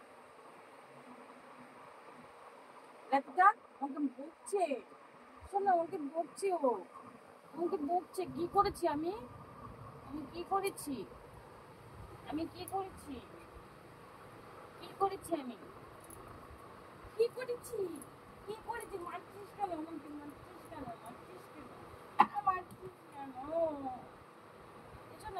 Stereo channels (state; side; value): identical; both; correlation 1.00